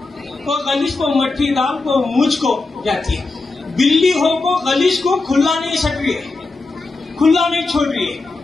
کو غلیظ کو مٹھی ڈال کو مجھ کو جاتی ہے. بلی ہو کو غلیظ کو کھلا نہیں سک رہی ہے، کھلا نہیں چھوڑ رہی ہے،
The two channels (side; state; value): right; quieter; 3.5 dB